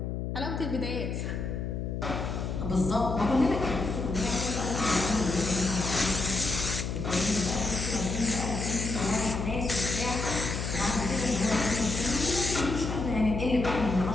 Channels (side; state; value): left; noise; hum, 3 dB below the sound